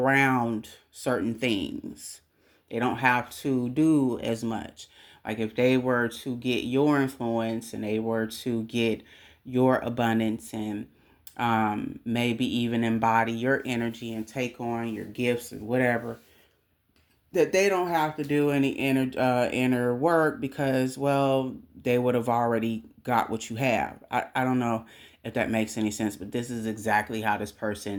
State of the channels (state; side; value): identical; both; correlation 1.00